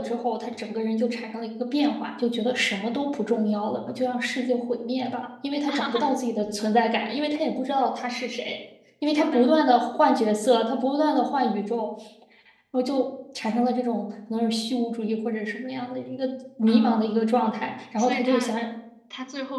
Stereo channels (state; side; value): identical; both; correlation 1.00